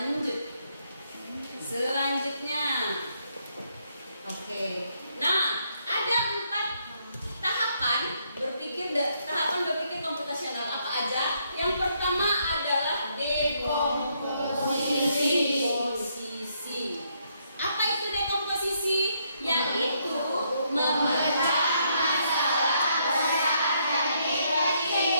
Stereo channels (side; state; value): both; inverted; correlation -0.74